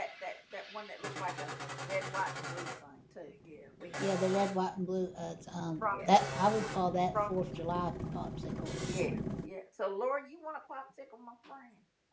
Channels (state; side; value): identical; both; correlation 1.00